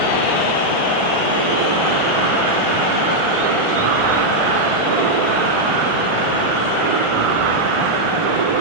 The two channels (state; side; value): late; left; 1.4 ms